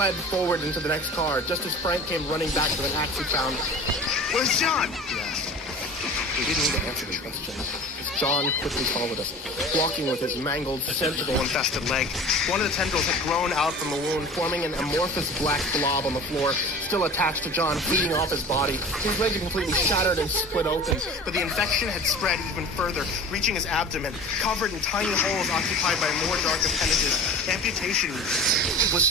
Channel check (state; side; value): normal; both; correlation 0.39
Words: forward into the next car, just as Frank came running back with an axe he found. Where's John? He asked. We didn't need to answer the question, as John quickly followed us, walking with his mangled, sentinel-infested leg. One of the tendrils had grown out from the wound, forming an amorphous black blob on the floor, still attached to John, feeding off his body. His leg had completely shattered and split open, but the infection had spread even further, reaching his abdomen, covered in tiny holes occupied by more dark appendages. Amputation